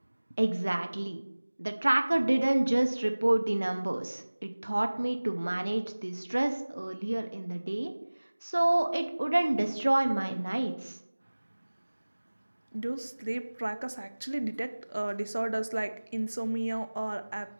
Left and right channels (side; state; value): both; inverted; correlation -1.00